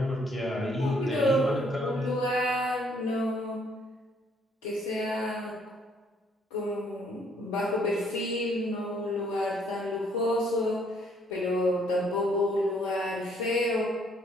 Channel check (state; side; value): normal; both; correlation 0.66